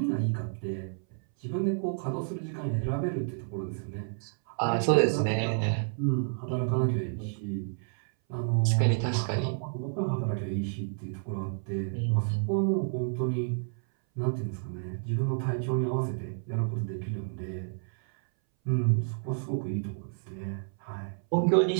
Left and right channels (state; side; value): silent; left; 58 dB below the other